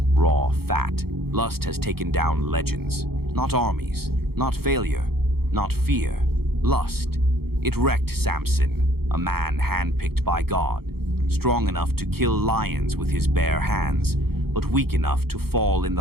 Raw fat. Lust has taken down legends. Not armies, not failure, not fear. Lust. It wrecked Samson, a man handpicked by God, strong enough to kill lions with his bare hands, but weak enough to fall in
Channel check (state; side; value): late; left; 0.95 ms